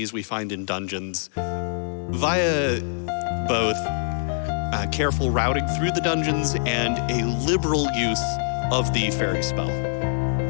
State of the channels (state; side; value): silent; right; 62 dB below the other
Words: we find in dungeons via both careful routing through the dungeons and a liberal use of the fairy spell.